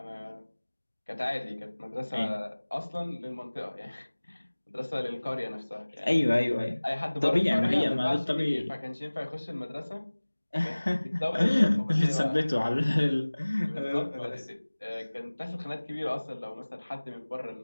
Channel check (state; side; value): inverted; both; correlation -1.00